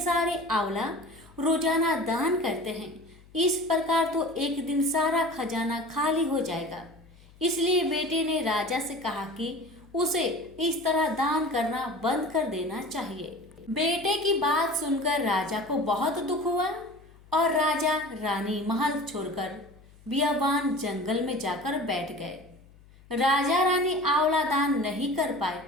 आंवला रोजाना दान करते हैं, इस प्रकार तो एक दिन सारा खजाना खाली हो जाएगा। इसलिए बेटे ने राजा से कहा कि उसे इस तरह दान करना बंद कर देना चाहिए। बेटे की बात सुनकर राजा को बहुत दुख हुआ और राजा रानी महल छोड़कर बियाबान जंगल में जाकर बैठ गए। राजा रानी आंवला दान नहीं कर पाए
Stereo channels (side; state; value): left; noise; hum, 25 dB below the sound